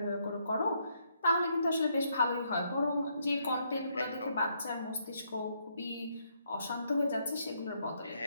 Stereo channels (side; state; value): both; inverted; correlation -0.74